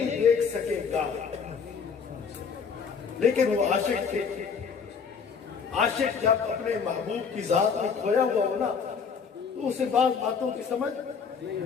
دیکھ سکے گا۔ لیکن وہ عاشق تھے، عاشق جب اپنے محبوب کی ذات میں کھویا ہوا ہو نا تو اسے بعض باتوں کی سمجھ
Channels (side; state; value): right; quieter; 6.0 dB